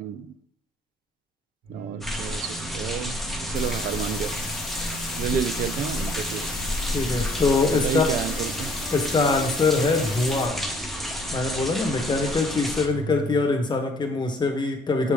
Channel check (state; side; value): normal; both; correlation 0.59